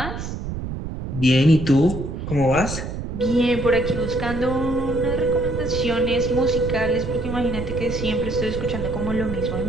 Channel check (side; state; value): right; noise; rumble, 6 dB below the sound